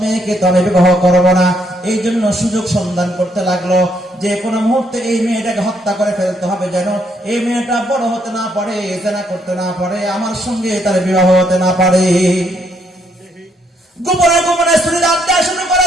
মেয়েকে তো আমি বিবাহ করবো না। এই জন্য সুযোগ সন্ধান করতে লাগলো, যে কোনো মুহূর্তে এই মেয়েটাকে হত্যা করে ফেলতে হবে, যেন এই মেয়েটা বড় হতে না পারে, জেনা করতে না পারে, আমার সঙ্গে তার বিবাহ হতে না পারে। গোপনে গোপনে স্ত্রী রাখতে শুরু করে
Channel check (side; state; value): both; normal; correlation 0.72